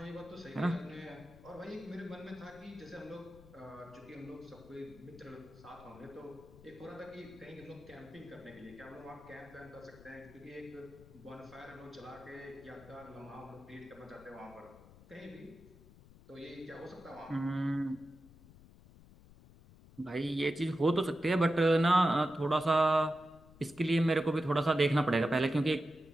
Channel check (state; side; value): noise; left; rumble, 22 dB below the sound